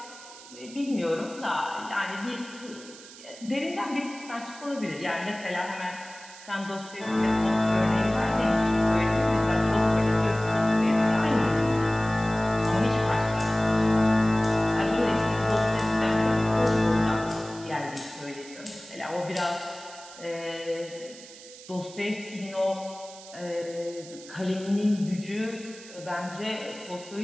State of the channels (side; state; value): right; noise; hiss, 18 dB below the sound